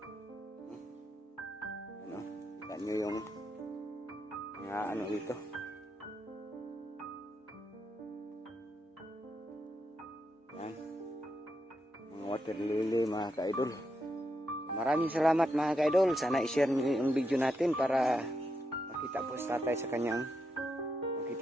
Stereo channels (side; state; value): both; normal; correlation 0.83